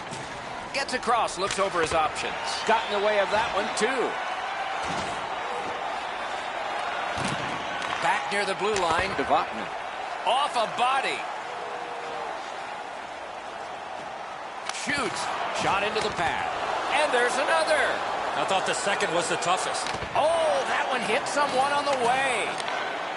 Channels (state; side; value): identical; both; correlation 1.00